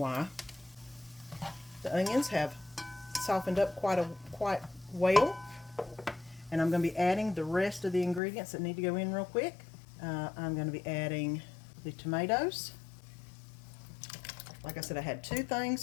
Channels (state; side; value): drops out; right; at 8.2 s